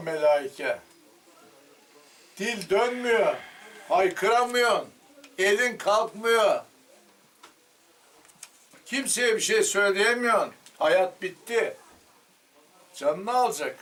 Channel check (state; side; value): identical; both; correlation 1.00